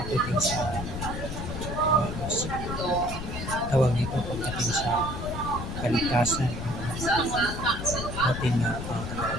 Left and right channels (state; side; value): noise; left; rumble, 6 dB below the sound